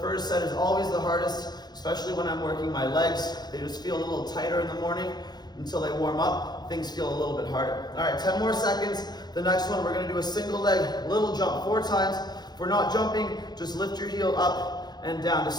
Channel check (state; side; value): late; right; 0.20 ms